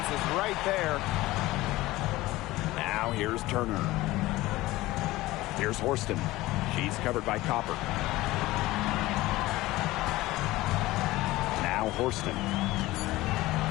is right there. Now here's Turner. Here's Forston. She's covered by Copper. Now Forston.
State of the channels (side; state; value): right; quieter; 18.2 dB